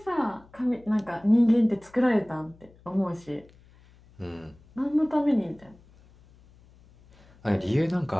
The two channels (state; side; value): noise; left; hum, 27 dB below the sound